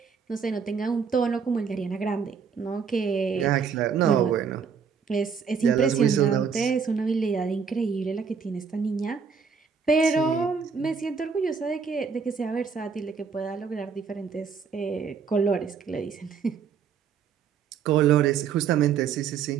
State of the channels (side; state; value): left; quieter; 6.2 dB